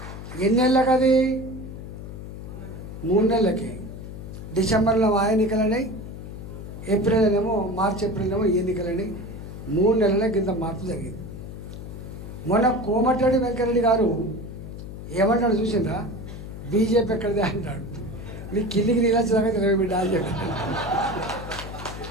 ఎన్నేళ్ళకి అది? 3 నెలలకి. డిసెంబర్లో ఆ ఎన్నికలన్నాయి, మార్చి ఏప్రిల్ ఎన్నికలని 3 నెలలకి ఇంత మార్పు జరిగింది. మొన్న కోమటిరెడ్డి వెంకరెడ్డి గారు ఏమంటాడు చూసిందా? బీజేపీ ఎక్కడిదే అంటాడు. నీ కిందికి నీళ్ళు వచ్చేదాకా తెలివి బిడ్డ అని చెప్పాడు.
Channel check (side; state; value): left; noise; hum, 10 dB below the sound